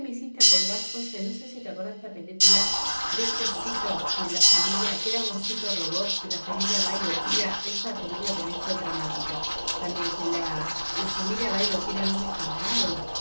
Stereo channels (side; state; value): both; inverted; correlation -1.00